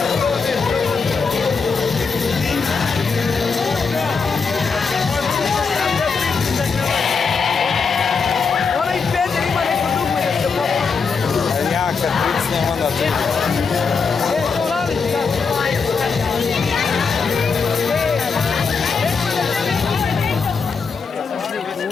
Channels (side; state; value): right; quieter; 5.2 dB